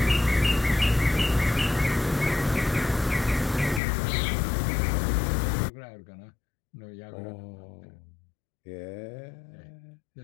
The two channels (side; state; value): right; drops out; at 3.8 s